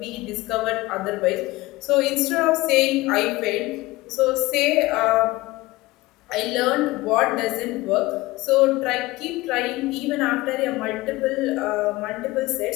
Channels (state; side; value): quieter; right; 20.0 dB